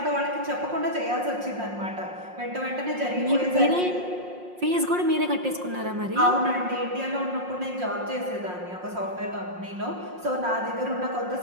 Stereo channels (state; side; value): late; left; 5.6 ms